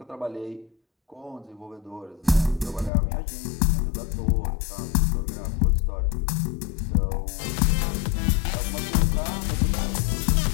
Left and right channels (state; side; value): drops out; right; at 2.9 s